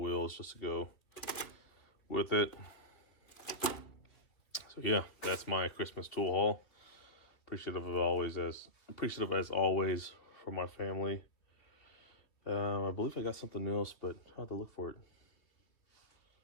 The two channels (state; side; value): late; right; 3.0 ms